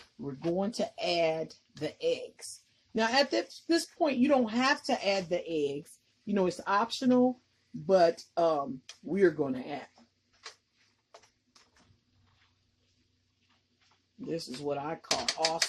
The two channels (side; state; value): both; identical; correlation 1.00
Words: we're going to add the eggs. Now, at this point, you don't have to add the eggs. You know, it's optional, but we're going to add them. This is what I call